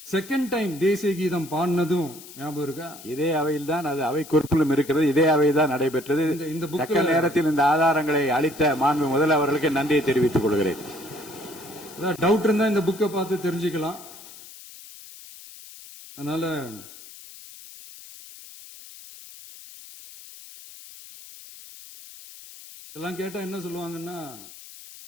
செகண்ட் டைம் தேசிய கீதம் பாடினதும் ஞாபகம் இருக்கா? இதே அவையில் தான் அது அவை குறிப்பிலும் இருக்கிறது. இதே அவை தான் நடைபெற்றது. இந்த தக்க நேரத்தில் இந்த ஆதாரங்களை அளித்த மாண்பு முதல்வர்களுக்கு நன்றியை தெரிவித்துக் கொள்கிறேன். டவுட் இருந்தா இந்த புக்கை பார்த்து தெரிஞ்சுக்கலாம். அதனால இதெல்லாம் கேட்டா என்ன சொல்லுவாங்கன்னா,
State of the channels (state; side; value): noise; left; hiss, 17 dB below the sound